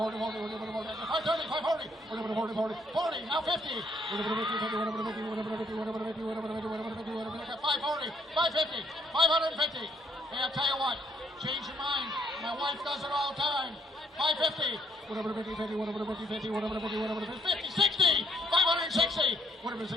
40, whatever 40. 530, 540. Whatever 40, 40, 40. Now 50. Whatever 50, 50, whatever 50, whatever 50, whatever 50, whatever 50, whatever 50, whatever 50. 540, 550, 550. Hey, I'll tell you what. Change your mind. My wife does it all the time. 550. Whatever 50, 50, whatever 50, 50, whatever 50, whatever 50, 50, 60. 560. 160. Whatever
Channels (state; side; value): normal; both; correlation 0.68